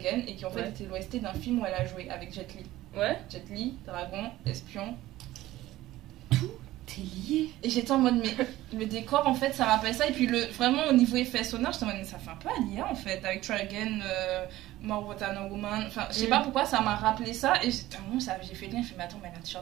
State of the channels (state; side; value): quieter; left; 16.1 dB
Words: et qui en fait Ouais. était l'OST d'un film où elle a joué avec Jet Li. Ouais. Jet Li, dragon, espion. T'es lié. Et j'étais en mode, mais le décor en fait ça rappelle ça, et puis vraiment au niveau effet sonore, j'étais en mode, mais ça fait un peu Alia en fait, avec Try Again, More What I Know Woman, enfin je sais pas pourquoi ça m'a rappelé ça, et j'ai fait lien, j'ai fait, mais attends, mais elle a un